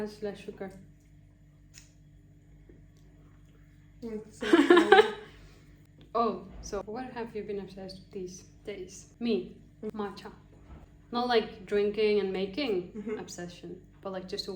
less sugar. It's so funny. Oh, so what have you been obsessed with these days? Me, matcha. Not like drinking and making obsession, but like just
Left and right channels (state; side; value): identical; both; correlation 1.00